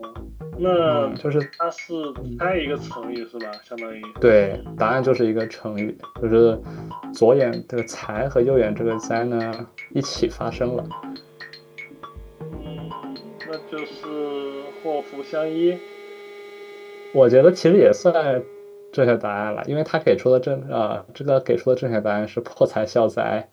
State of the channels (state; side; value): identical; both; correlation 1.00